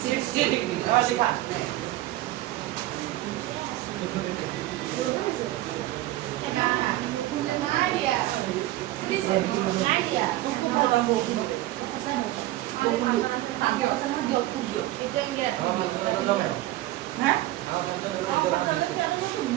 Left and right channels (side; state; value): left; quieter; 16.1 dB